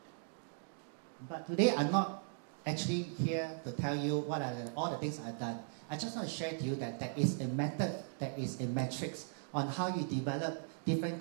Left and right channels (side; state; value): left; silent; digital silence